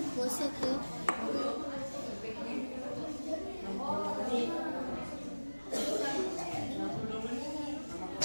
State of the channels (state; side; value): inverted; both; correlation -1.00